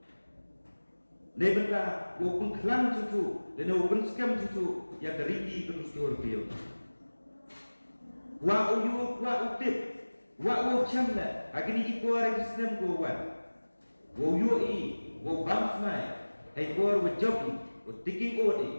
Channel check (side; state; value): both; inverted; correlation -1.00